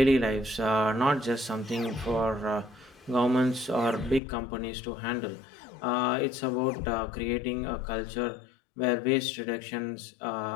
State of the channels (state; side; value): drops out; right; at 4.2 s